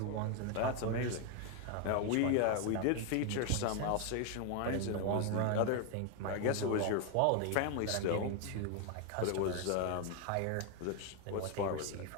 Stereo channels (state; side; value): different; both; correlation 0.01